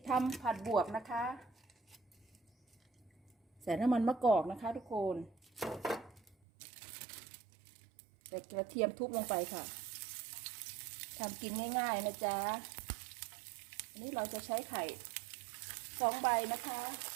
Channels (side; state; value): left; drops out; at 6.4 s